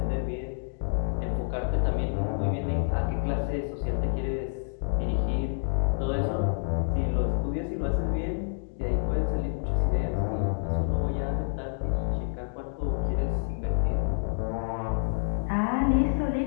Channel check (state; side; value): silent; right; digital silence